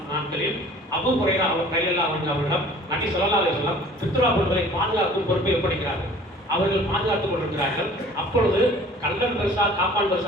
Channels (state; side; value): normal; both; correlation 0.48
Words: நாட்களில் அபூ ஹுரைரா ரலியல்லாஹு அன்ஹு அவர்களிடம் நபி ஸல்லல்லாஹு அலைஹி வஸல்லம் ஃபித்ரா பொருட்களை பாதுகாக்கும் பொறுப்பை ஒப்படைக்கிறார்கள். அவர்கள் பாதுகாத்துக் கொண்டிருக்கிறார்கள். அப்பொழுது கள்ளன் பெருசா காப்பான்